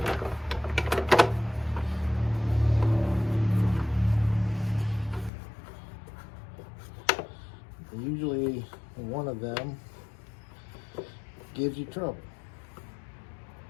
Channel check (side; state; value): right; drops out; at 5.3 s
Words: Usually one of them gives you trouble.